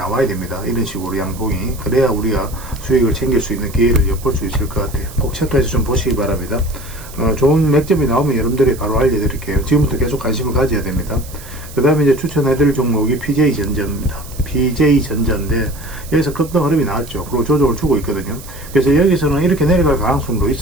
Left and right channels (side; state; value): right; noise; hiss, 17 dB below the sound